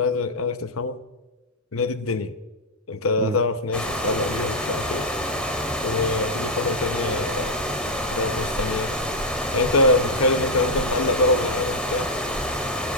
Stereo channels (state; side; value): normal; both; correlation -0.02